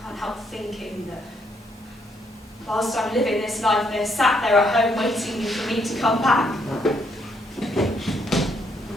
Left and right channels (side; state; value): both; normal; correlation 0.73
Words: help thinking that whilst I'm living this life, they're sat there at home waiting for me to come back.